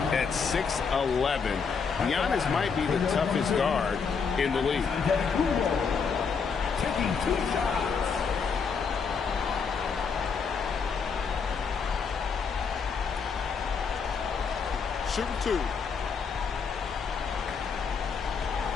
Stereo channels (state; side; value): quieter; right; 5.7 dB